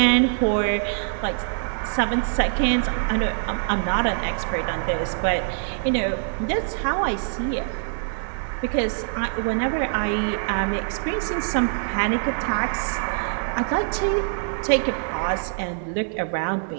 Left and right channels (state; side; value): silent; left; digital silence